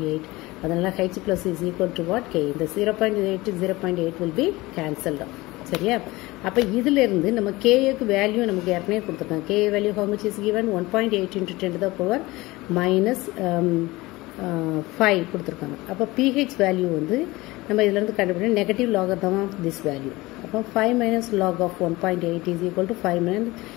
அதனால H plus is equal to what? K. The 0.8 to 0.8 will be cancelled out. சரியா? அப்போ இதிலிருந்து நம்ம Kக்கு value நமக்கு ஏற்கனவே கொடுத்துருக்காங்க. K value how much is given? 1.8 into 10 to the power minus 5 கொடுத்துருக்காங்க. அப்போ pH வேல்யூ வந்து நம்ம இதிலிருந்து கண்டுபிடிக்க negative logarithm of this value. அப்போ 5 minus log of 1.8 is equal to 5 minus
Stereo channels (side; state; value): right; quieter; 20.6 dB